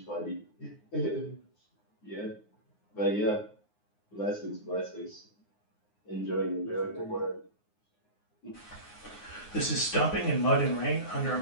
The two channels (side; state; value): right; late; 9.6 ms